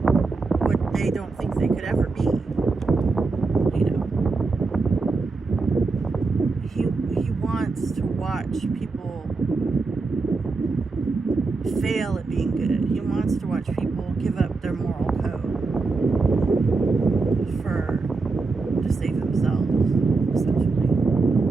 what they don't think they could ever be. You know, he wants to watch people fail at being good. He wants to watch people give up their moral code to save themselves, essentially.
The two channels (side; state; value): left; quieter; 4.0 dB